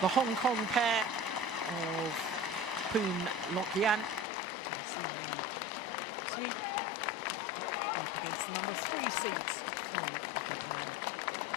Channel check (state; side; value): drops out; right; at 4.2 s